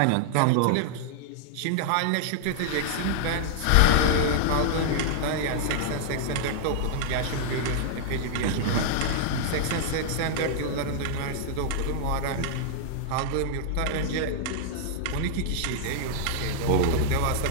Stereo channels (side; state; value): both; different; correlation -0.01